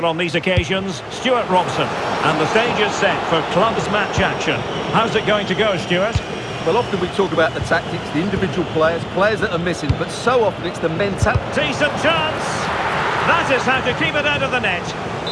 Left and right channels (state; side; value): identical; both; correlation 1.00